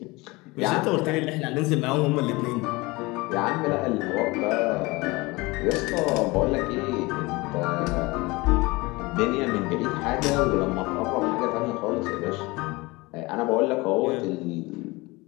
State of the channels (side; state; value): right; quieter; 23.2 dB